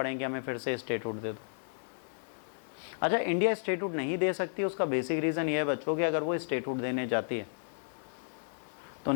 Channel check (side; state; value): right; silent; digital silence